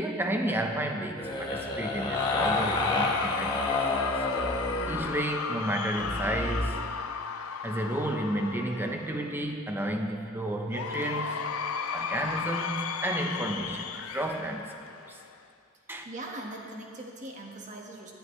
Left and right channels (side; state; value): both; normal; correlation 0.44